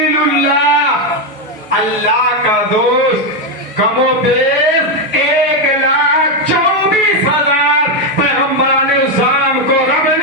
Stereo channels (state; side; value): normal; both; correlation 0.06